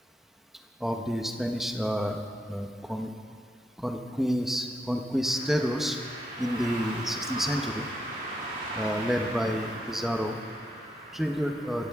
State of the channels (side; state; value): both; normal; correlation 0.81